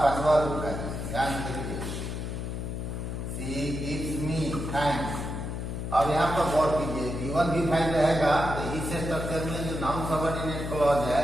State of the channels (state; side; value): noise; left; hum, 4 dB below the sound